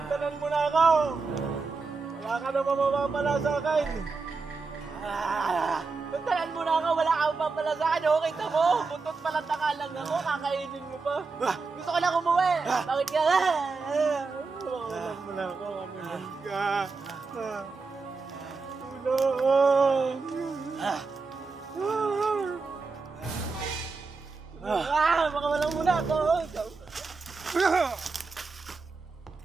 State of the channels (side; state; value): left; quieter; 4.3 dB